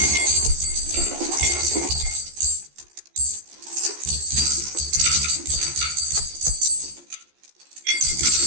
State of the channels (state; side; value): late; left; 14 ms